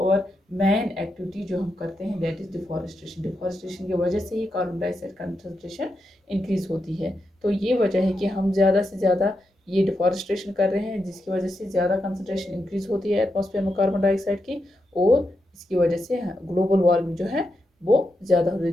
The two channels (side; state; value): both; normal; correlation 0.85